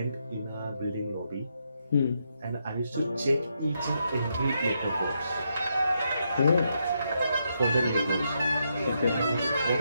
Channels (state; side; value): inverted; both; correlation -0.80